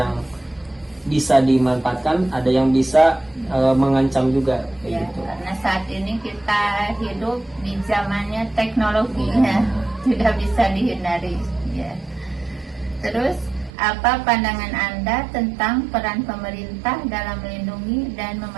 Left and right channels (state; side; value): drops out; left; at 13.7 s